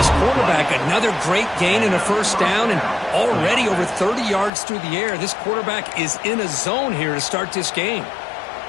quarterback. Another great gain in a 1st down, and already over 30 yards through the air. This quarterback is in a zone here to start this game.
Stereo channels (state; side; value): drops out; right; at 4.5 s